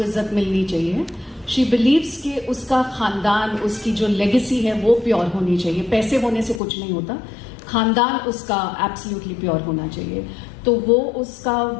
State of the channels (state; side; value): drops out; right; at 6.6 s